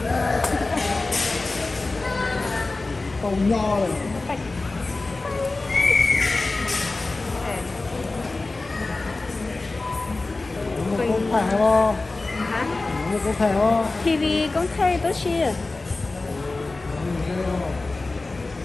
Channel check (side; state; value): right; quieter; 3.3 dB